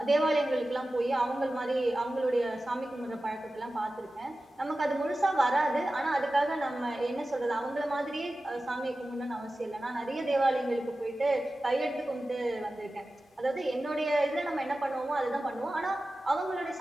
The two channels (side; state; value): both; normal; correlation 0.95